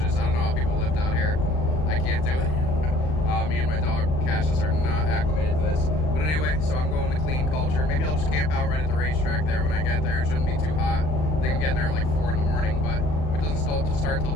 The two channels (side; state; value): right; late; 39 ms